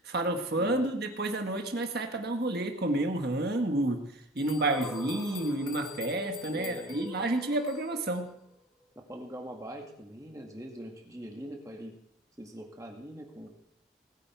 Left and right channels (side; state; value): both; normal; correlation 0.41